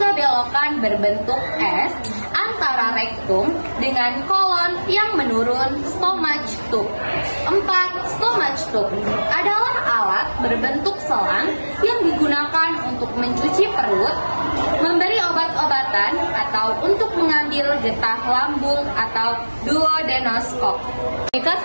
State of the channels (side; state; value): both; inverted; correlation -1.00